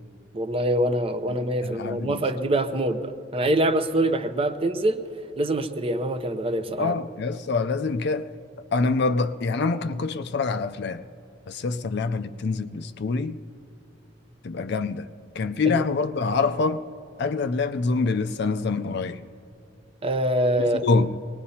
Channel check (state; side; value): normal; both; correlation 0.39